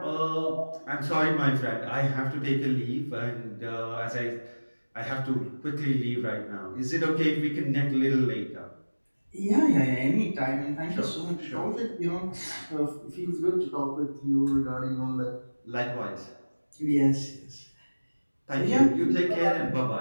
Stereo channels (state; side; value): inverted; both; correlation -1.00